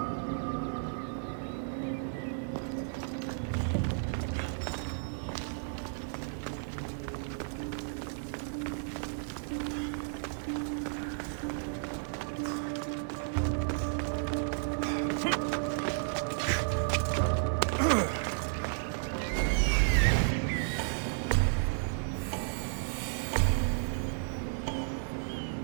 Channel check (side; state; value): left; silent; digital silence